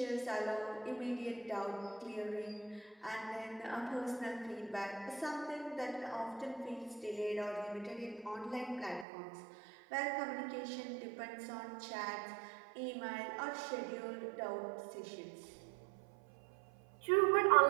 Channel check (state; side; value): drops out; left; at 9.1 s